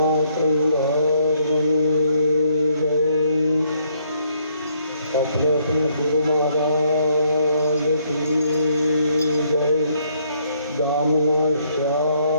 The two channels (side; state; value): both; inverted; correlation -0.69